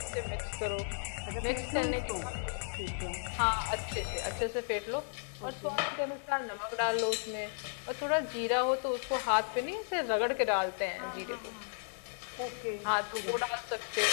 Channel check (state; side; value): silent; right; digital silence